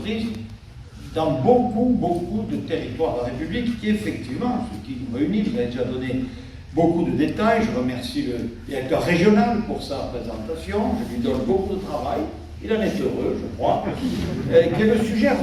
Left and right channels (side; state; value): both; identical; correlation 1.00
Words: dans beaucoup de territoires de la République, qui effectivement, ce qui nous réunit, vous avez déjà donné beaucoup de détails, je remercie le directeur régional pour sa présentation, je lui donne beaucoup de travail, il en est heureux, je crois, qui est le sujet